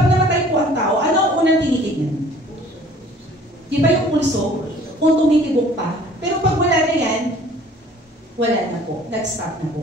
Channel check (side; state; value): both; normal; correlation 0.52